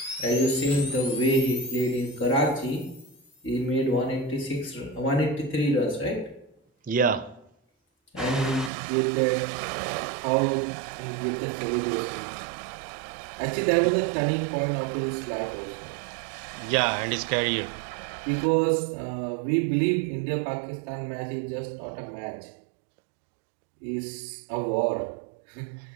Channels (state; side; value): drops out; left; at 8.7 s